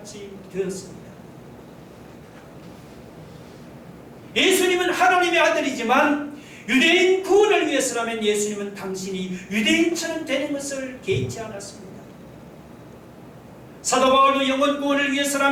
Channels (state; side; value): identical; both; correlation 1.00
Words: 되었습니다. 예수님은 하나님의 아들이지만 유대인 구원을 위해서라면 예수님은 당신이 유대인처럼 되는 것을 개의치 않았습니다. 사도 바울도 영혼 구원을